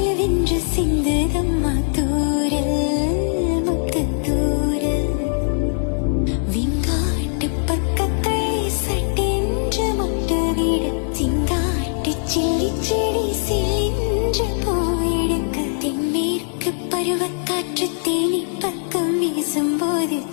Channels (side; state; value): right; silent; 65 dB below the other